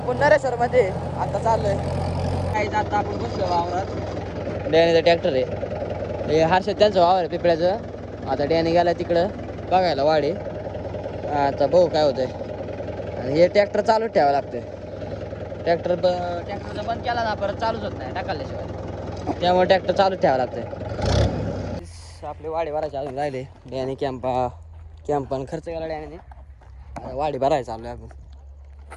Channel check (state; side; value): identical; both; correlation 1.00